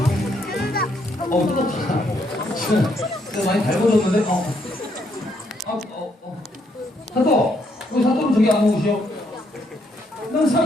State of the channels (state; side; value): normal; both; correlation 0.73